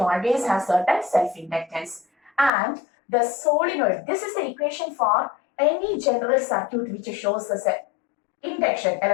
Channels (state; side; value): drops out; right; at 2.5 s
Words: always has certain self-inductance. And the solenoid, this is the equation for any general circuit which shows the induction,